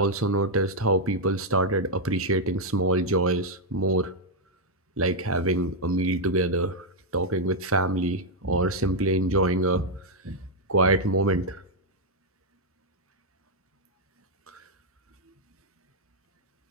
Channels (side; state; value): both; normal; correlation -0.01